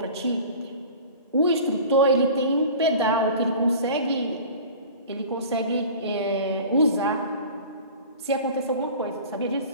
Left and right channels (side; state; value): both; inverted; correlation -0.40